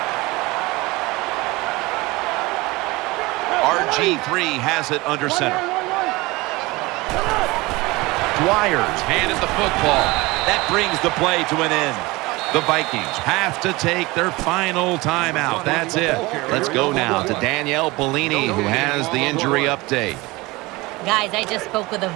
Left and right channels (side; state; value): left; quieter; 22.1 dB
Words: RG3 has it under center. Dwyer's handed the football. That brings the play to an end. The Vikings have to take their final timeout. That's it. Let's go now to Danielle Bellini, who has the injury update. Guys, I just spoke with a